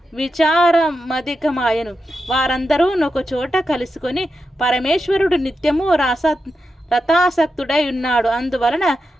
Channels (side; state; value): both; normal; correlation 0.88